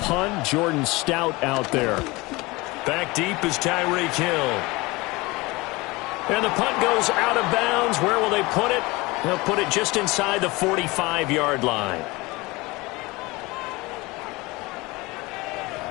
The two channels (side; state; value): right; quieter; 23.0 dB